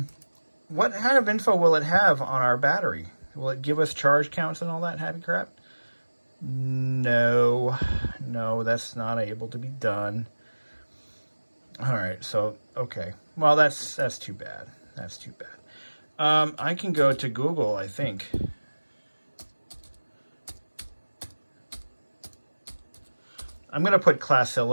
kind of info will it have on our battery? Will it give us charge counts and all that happy crap? No, that's not able to be done. All right, so, okay. Well, that's too bad. That's too bad. I can go to Google, I think. I'm going to put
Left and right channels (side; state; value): both; inverted; correlation -1.00